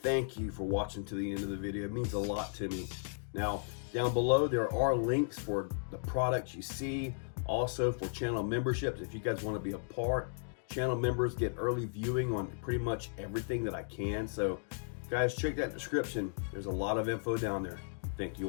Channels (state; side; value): silent; right; digital silence